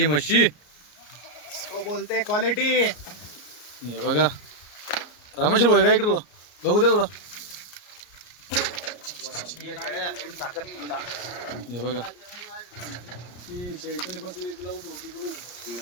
म्हशी बोलते क्वालिटी. हे बघा रामेश्वर भाई काय इकडं बघू द्या थोडं. हे बघा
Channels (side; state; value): right; late; 34 ms